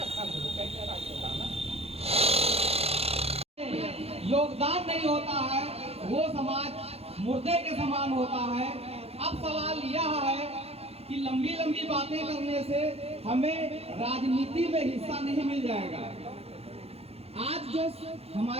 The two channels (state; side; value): late; left; 0.29 ms